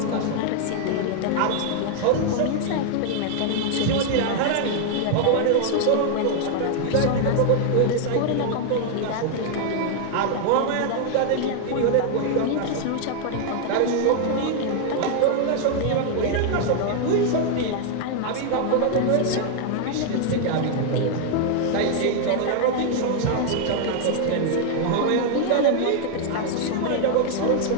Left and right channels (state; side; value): different; both; correlation 0.00